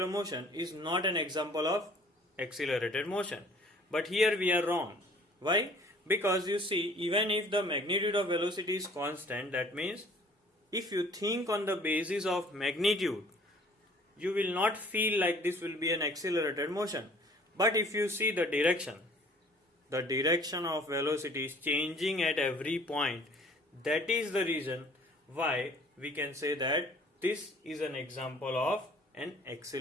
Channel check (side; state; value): both; normal; correlation 0.53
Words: motion is not an example of accelerated motion. But here we are wrong. Why? Because you see, even if the magnitude of velocity is constant, that means if you think on the basis of magnitude, you will not feel like this will be an accelerated motion. But if you see the direction of velocity is changing at every point. That is the reason why we can say that this is an example of an